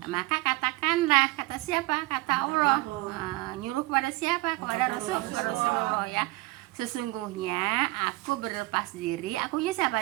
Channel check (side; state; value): left; quieter; 21.1 dB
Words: Maka katakanlah, kata siapa? Kata Allah. Nyuruh kepada siapa? Kepada Rasulullah ya. Sesungguhnya aku berlepas diri. Akunya siapa